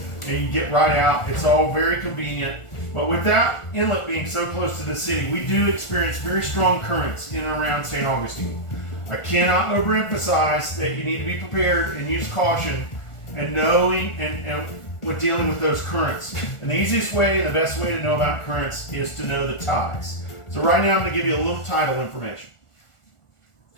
and you can get right out. It's all very convenient. But with that inlet being so close to the city, we do experience very strong currents in and around St. Augustine. I cannot overemphasize that you need to be prepared and use caution and knowing and with dealing with those currents. And the easiest way and the best way to know about currents is to know the tides. So right now I'm going to give you a little tidal information.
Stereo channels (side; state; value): right; late; 1.4 ms